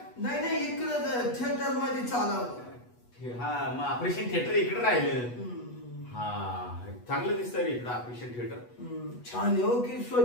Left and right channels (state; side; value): late; right; 8.2 ms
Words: नाही इकडं थिएटर मध्ये चालवलं. हा मग ऑपरेशन थिएटर इकडे राहिलं. हा चांगलं दिसतं रे इकडं ऑपरेशन थिएटर. छान आहे हो की